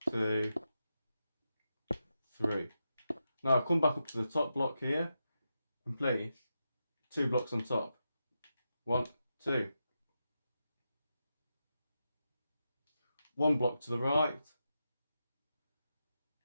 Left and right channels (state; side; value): inverted; both; correlation -0.88